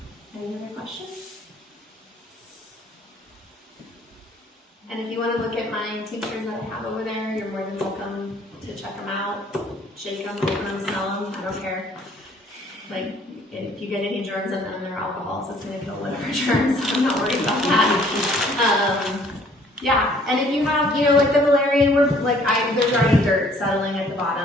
Any other questions? And if you want to look at my tinctures that I have over there, you're more than welcome to check them out, shake them, open them, smell them, I don't care. Like, if you get any germs in them, they're alcohol, so it's going to kill whatever germs. I'm not worried about that. Yeah, and if you have, you know, like the Valerian, there's already dirt settling at the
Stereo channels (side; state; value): both; normal; correlation 0.59